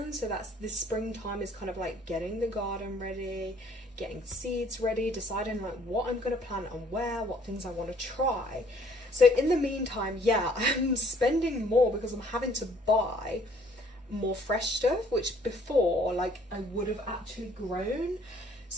so that's this springtime is kind of like getting the garden ready, getting seeds ready, deciding like what I'm going to plant and where, what things I want to try. So in the meantime, yeah, I'm spending more because I'm having to buy more fresh stuff, which before like I would have actually grown.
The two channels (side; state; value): both; normal; correlation 0.59